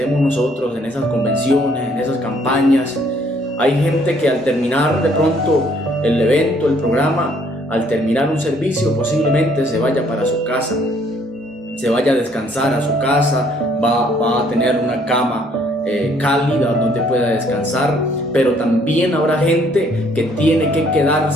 nosotros, en esas convenciones, en esas campañas, hay gente que al terminar de pronto el evento, el programa, al terminar un servicio posiblemente se vaya para su casa, se vaya a descansar a su casa, va a tener una cama cálida donde pueda descansar, pero también habrá gente que tiene que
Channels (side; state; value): both; normal; correlation 0.64